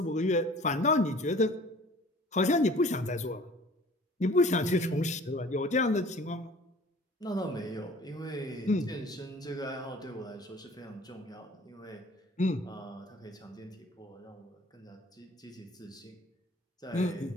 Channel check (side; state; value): both; normal; correlation 0.48